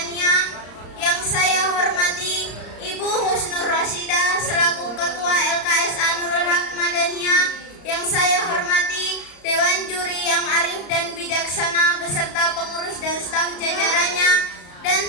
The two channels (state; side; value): late; right; 34 ms